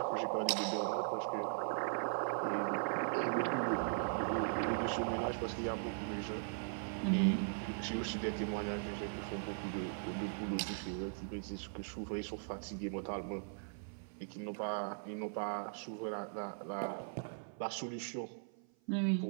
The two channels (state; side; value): silent; left; 51 dB below the other